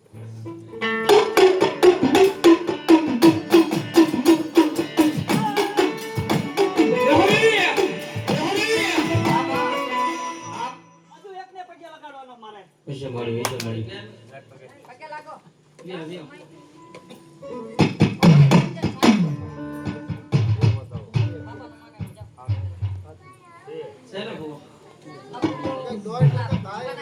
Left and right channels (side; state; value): both; identical; correlation 1.00